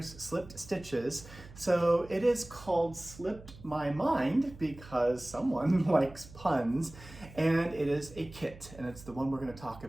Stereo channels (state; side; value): noise; right; hum, 18 dB below the sound